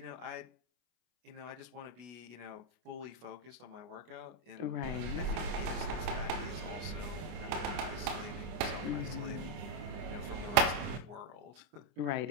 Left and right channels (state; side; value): late; left; 25 ms